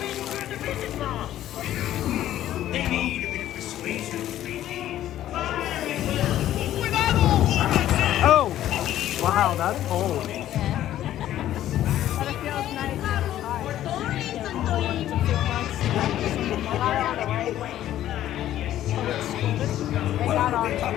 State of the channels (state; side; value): quieter; right; 12.6 dB